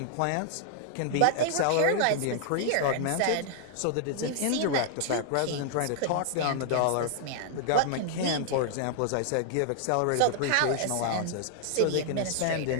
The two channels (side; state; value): both; different; correlation -0.01